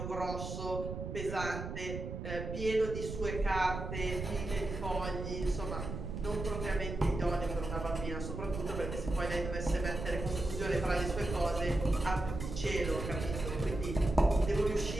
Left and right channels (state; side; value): noise; right; rumble, 6 dB below the sound